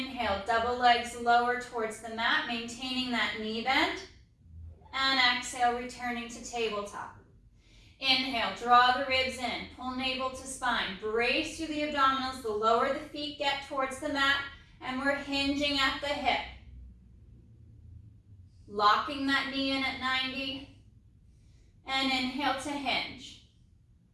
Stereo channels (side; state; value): both; identical; correlation 1.00